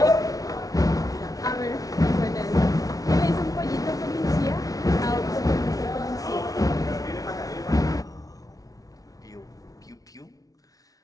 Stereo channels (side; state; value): right; late; 0.18 ms